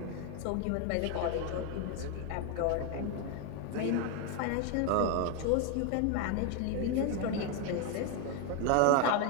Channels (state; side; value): different; both; correlation 0.01